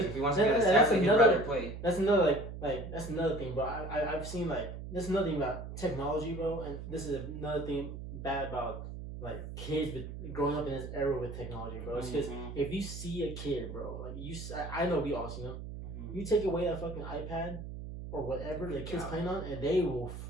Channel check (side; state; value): right; noise; hum, 9 dB below the sound